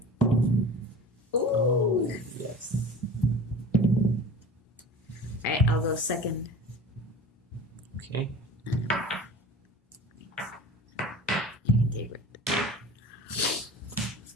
Ooh. Oh, yes. Alright, I'll go second. Okay.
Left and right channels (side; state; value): both; normal; correlation 0.38